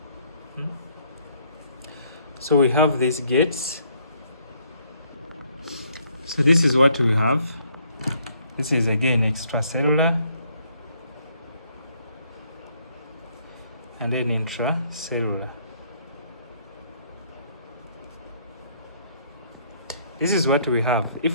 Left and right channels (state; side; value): inverted; both; correlation -0.67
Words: So we have these gates. So this is what we have. This is again extracellular and then intracellular. This is what we have. If